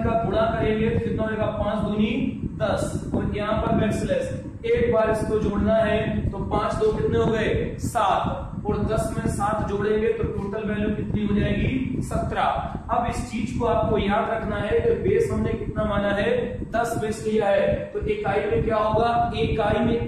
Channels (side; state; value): both; identical; correlation 1.00